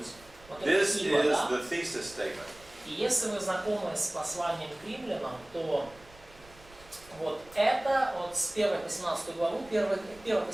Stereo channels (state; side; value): noise; right; rumble, 24 dB below the sound